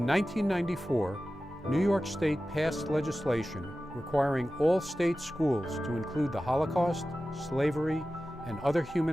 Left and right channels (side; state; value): both; normal; correlation 0.95